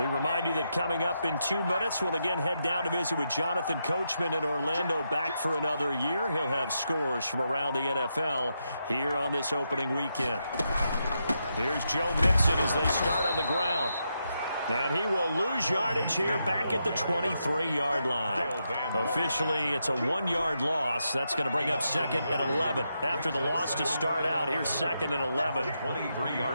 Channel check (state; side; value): inverted; both; correlation -0.83